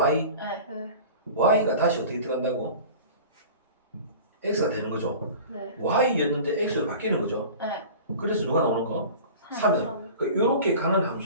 네. 네. Y가 다시 어떻게 들어간다고? X가 되는 거죠. 네. Y였는데 X로 바뀌는 거죠. 네. 그래서 누가 나오는 거? 3은. 이렇게 가는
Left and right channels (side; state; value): both; inverted; correlation -0.39